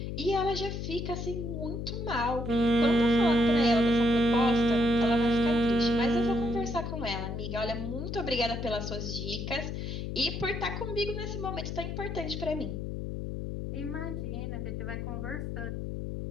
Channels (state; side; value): noise; left; hum, 5 dB below the sound